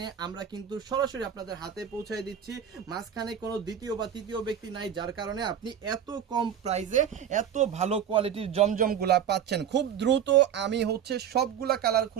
আমরা কিন্তু সরাসরি আপনাদের হাতে পৌঁছায় দিচ্ছি। মাঝখানে কোনো দ্বিতীয় বা তৃতীয় ব্যক্তি নাই, যার কারণে আপনি এত কম প্রাইসে এত ভালো কোয়ালিটির জমজমগুলা পাচ্ছেন। খুব দ্রুত আমি সবগুলা কালার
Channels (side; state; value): left; quieter; 8.9 dB